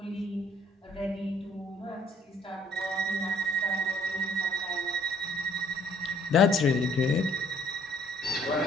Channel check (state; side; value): normal; both; correlation 0.62